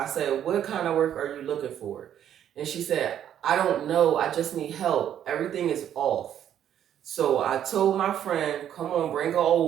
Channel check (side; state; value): left; quieter; 10.2 dB